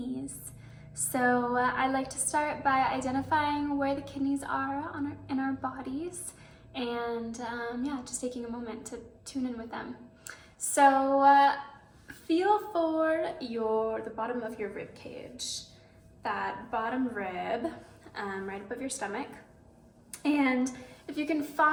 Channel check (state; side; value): identical; both; correlation 1.00